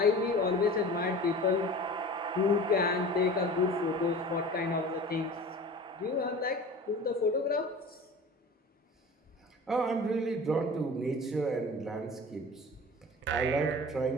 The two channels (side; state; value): both; normal; correlation 0.38